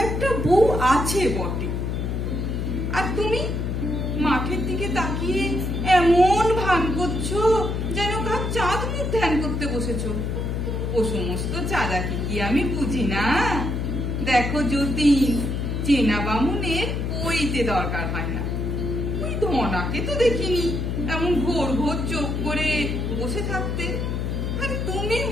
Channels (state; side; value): noise; left; hum, 1 dB below the sound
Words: একটা বউ আছে বটে। আর তুমি মাঠের দিকে তাকিয়ে এমন ভান করছো যেন কার চাঁদ মুখ ধ্যান করতে বসেছো। ও সমস্ত চাঁদাকি কি আমি বুঝি না? দেখো জ্যোতি, চেনা বামুনের কইতে দরকার হয় না। ওই ধনাকে তো দেখিনি এমন ঘোর ঘোর চোখ করে বসে থাকতে। আর তুমি